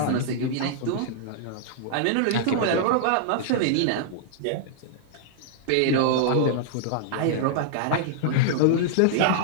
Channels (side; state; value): both; different; correlation -0.01